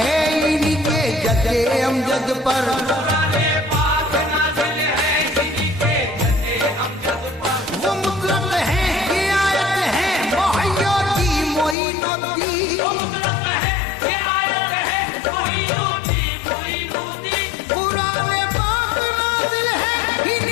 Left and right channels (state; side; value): drops out; right; at 11.8 s